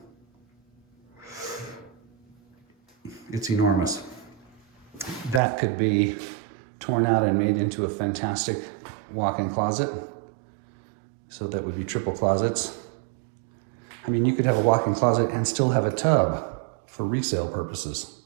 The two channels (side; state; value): left; drops out; at 5.4 s